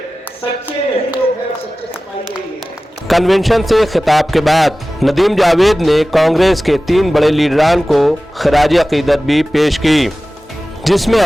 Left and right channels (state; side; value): normal; both; correlation 0.96